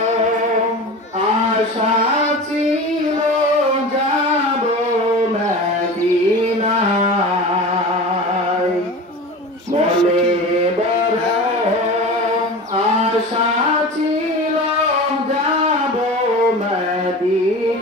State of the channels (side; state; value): both; normal; correlation 0.32